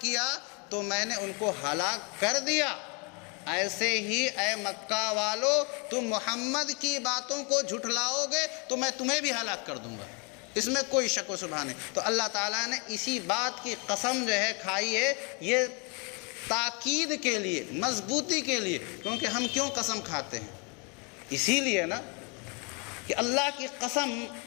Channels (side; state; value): right; quieter; 33.7 dB